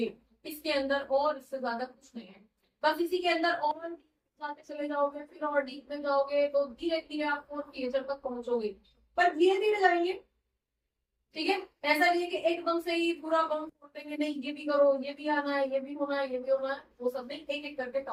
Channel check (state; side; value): identical; both; correlation 1.00